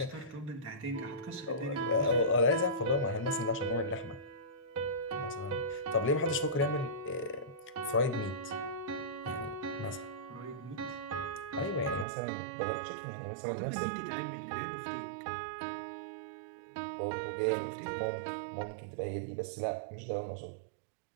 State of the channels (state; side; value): drops out; left; at 12.1 s